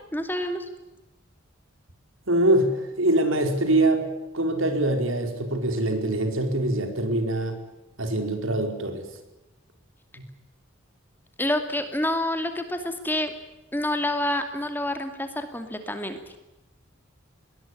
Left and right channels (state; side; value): normal; both; correlation 0.27